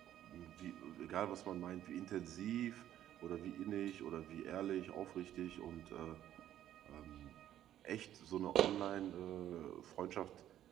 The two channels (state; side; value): quieter; left; 11.8 dB